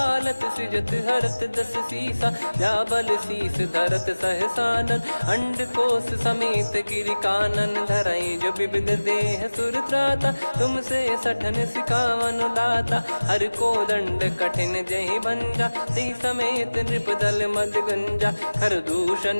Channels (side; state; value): both; inverted; correlation -1.00